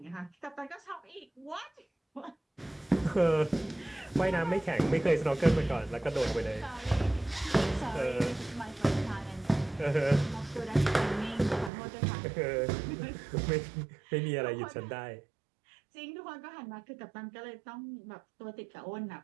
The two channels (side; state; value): left; drops out; at 11.7 s